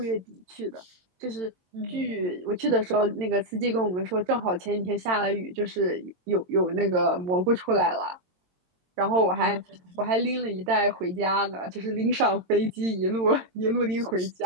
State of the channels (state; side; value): late; left; 22 ms